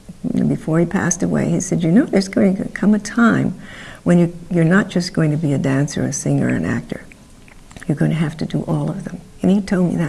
before he passed away, he said, you know, there's going to come a time when you're not just going to be a dancer, a singer, an actor. You're going to have to do all of them. And he told me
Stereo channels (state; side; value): identical; both; correlation 1.00